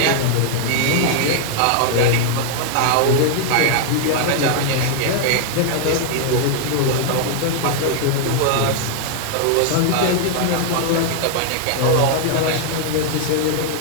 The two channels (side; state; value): both; different; correlation 0.00